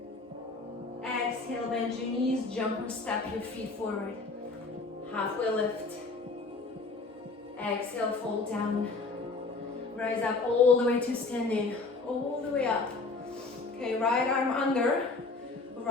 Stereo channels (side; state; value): right; quieter; 3.8 dB